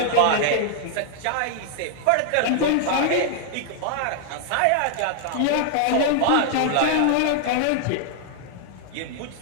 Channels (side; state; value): both; different; correlation -0.01